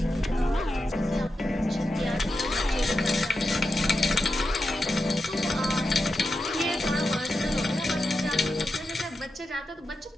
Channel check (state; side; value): normal; both; correlation 0.89